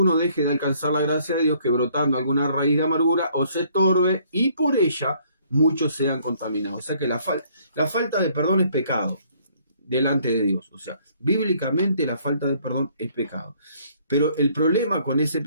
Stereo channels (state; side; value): inverted; both; correlation -0.63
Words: deje de alcanzar la gracia de Dios, que brotando alguna raíz de amargura o se estorbe, y por ella muchos sean contaminados. O sea que la falta de perdón es pecado delante de Dios. O sea, bíblicamente la falta de perdón es pecado. Pero el problema con ese